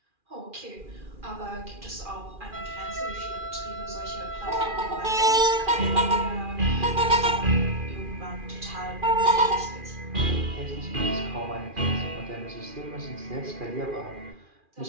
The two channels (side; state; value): left; late; 2.4 ms